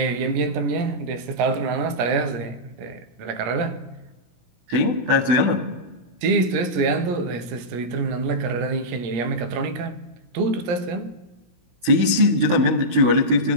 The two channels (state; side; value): late; left; 16 ms